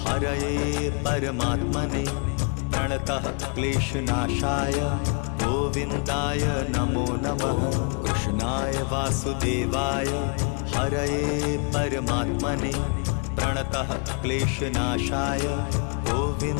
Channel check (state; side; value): quieter; right; 39.1 dB